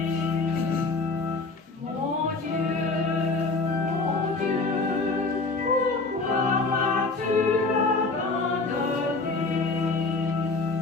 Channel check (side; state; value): right; quieter; 3.7 dB